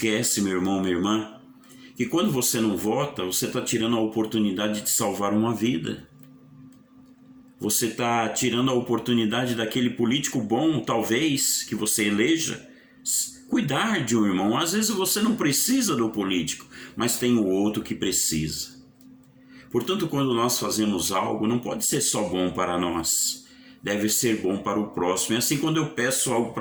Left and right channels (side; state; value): both; identical; correlation 1.00